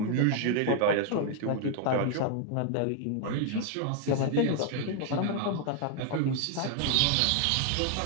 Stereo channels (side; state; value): both; different; correlation 0.00